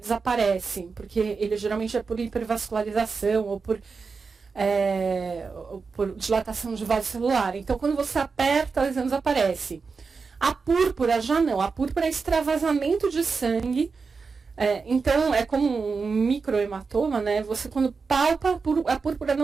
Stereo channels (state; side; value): quieter; left; 4.8 dB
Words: porque ele geralmente é por hipervascularização ou por dilatação de vaso celular. Então, quando você aperta, a lesão desaparece. A púrpura já não. A púrpura é extravasamento de sangue. Então, é como um microhematoma, né? Você, quando palpa, a púrpura